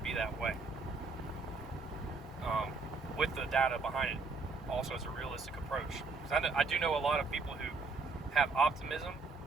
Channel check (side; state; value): left; quieter; 4.0 dB